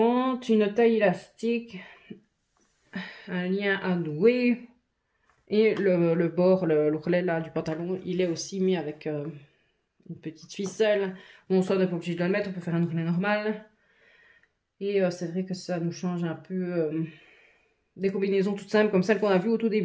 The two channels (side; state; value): both; identical; correlation 1.00